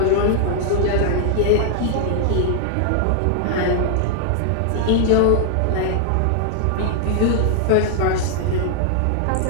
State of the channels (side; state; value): both; different; correlation -0.01